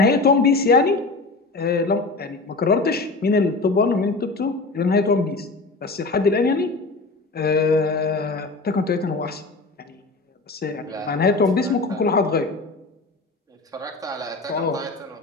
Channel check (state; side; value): quieter; right; 3.5 dB